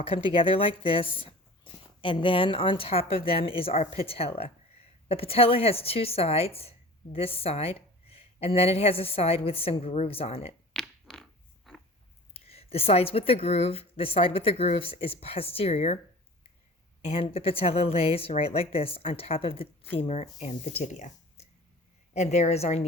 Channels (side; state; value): both; normal; correlation 0.40